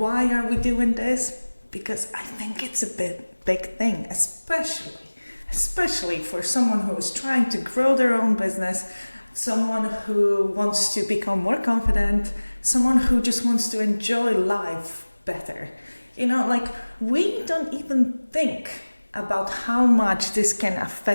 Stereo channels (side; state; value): both; inverted; correlation -1.00